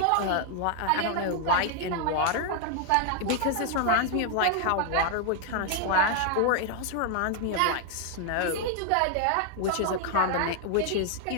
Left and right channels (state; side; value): different; both; correlation 0.00